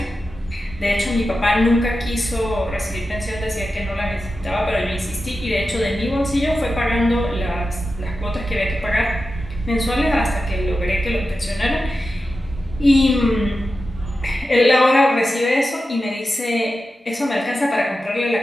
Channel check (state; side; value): normal; both; correlation 0.92